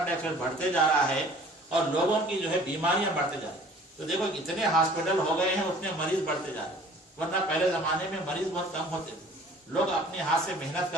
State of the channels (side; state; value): both; normal; correlation 0.50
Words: डाइऑक्साइड बढ़ते जा रहा है और लोगों की जो है बीमारियां बढ़ते जा रही है। तो देखो इतने हॉस्पिटल हो गए हैं, उतने मरीज बढ़ते जा रहे हैं। वरना पहले जमाने में मरीज बहुत कम होते थे, लोग अपने हाथ से मेहनत